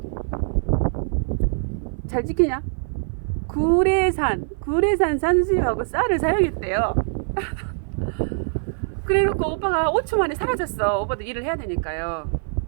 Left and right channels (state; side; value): silent; left; 55 dB below the other